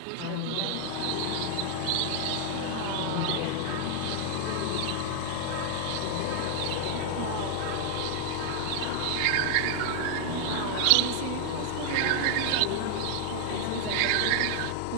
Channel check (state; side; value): different; both; correlation 0.00